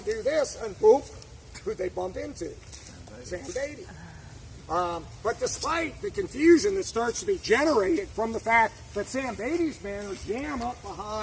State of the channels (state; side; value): identical; both; correlation 1.00